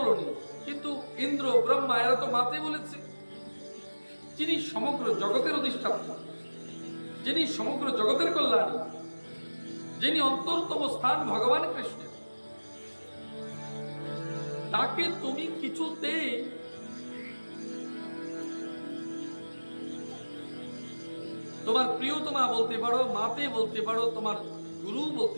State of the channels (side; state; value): both; inverted; correlation -1.00